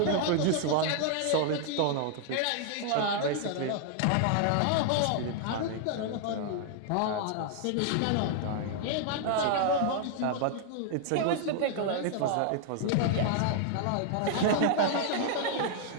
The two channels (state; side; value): different; both; correlation 0.00